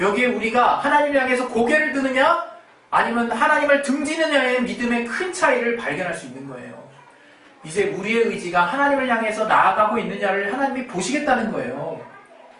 우리가 하나님을 향해서 고개를 드느냐 아니면 하나님을 등지느냐의 믿음의 큰 차이를 발견할 수 있는 거예요. 이제 우리의 의지가 하나님을 향해서 나아가고 있느냐를 하나님이 보시겠다는 거예요.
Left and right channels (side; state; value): both; identical; correlation 1.00